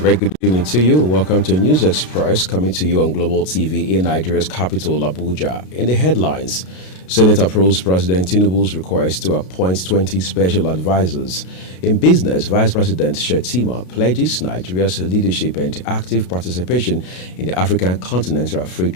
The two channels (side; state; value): right; late; 33 ms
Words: good evening to you. Welcome to News Express, coming to you on Global TV in Nigeria's capital, Abuja. In the headlines, Senate approves President Tinubu's request to appoint 20 special advisors. In business, Vice President Shettima pledges Nigeria's leadership and active participation in the African Continental Free